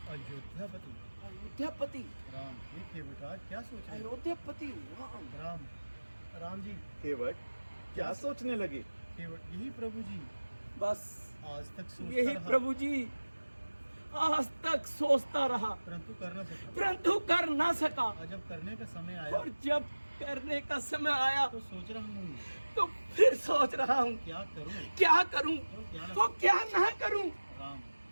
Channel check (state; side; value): inverted; both; correlation -1.00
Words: अयोध्यापति अयोध्यापति राम, ये केवटराज क्या सोच रहे हैं? अयोध्यापति राम। राम, राम जी, केवट क्या सोचने लगे? केवट यही प्रभु जी बस आज तक सोचता यही रहा, प्रभु जी आज तक सोचता रहा परंतु कर न सका। परंतु कर ना सका। और जब करने का समय आया और जब करने का समय आया तो सोच रहा हूँ तो फिर सोच रहा हूँ क्या करूँ क्या करूँ तो क्या तो क्या ना करूँ। राम,